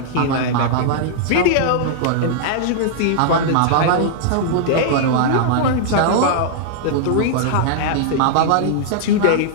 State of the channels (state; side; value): different; both; correlation -0.01